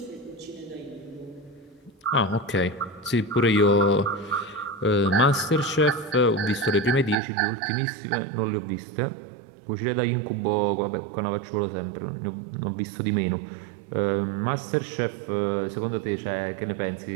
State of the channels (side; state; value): left; drops out; at 7.2 s